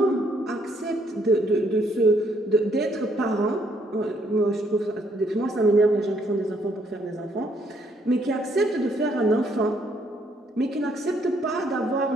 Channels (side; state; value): both; normal; correlation 0.69